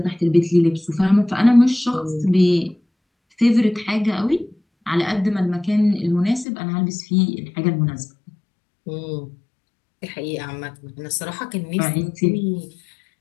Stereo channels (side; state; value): right; drops out; at 6.5 s